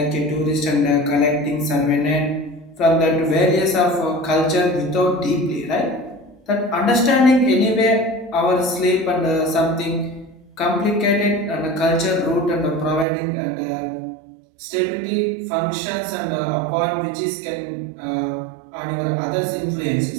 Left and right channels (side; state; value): left; drops out; at 13.1 s